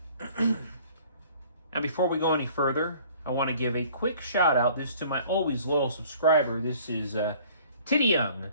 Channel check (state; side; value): inverted; both; correlation -0.53